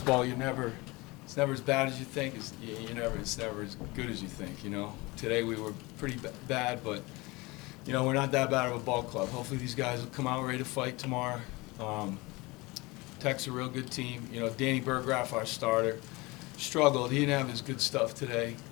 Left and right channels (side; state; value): right; quieter; 23.6 dB